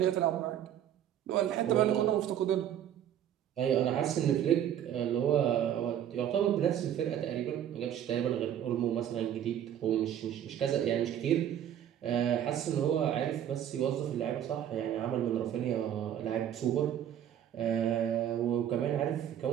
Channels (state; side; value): quieter; left; 10.4 dB